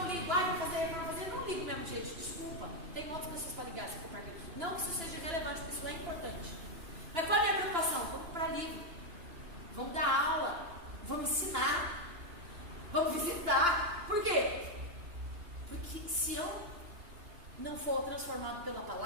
ligo? Vou fazer reforma, eu não ligo mesmo, gente, desculpa. Tem outras pessoas para ligar, se for para mim. Não que isso seja relevante, porque isso é importante. Mas qual é a minha preocupação? Vamos para livro, vamos dar aula, vamos ensinar, vamos visitar. Por quê? Porque se eu não for transformado pela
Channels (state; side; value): late; left; 2.9 ms